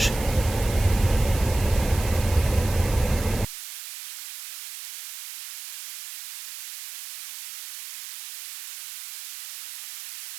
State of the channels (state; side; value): noise; right; hiss, 13 dB below the sound